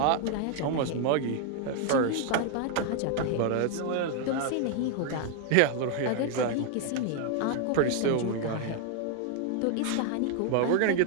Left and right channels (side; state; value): both; different; correlation 0.00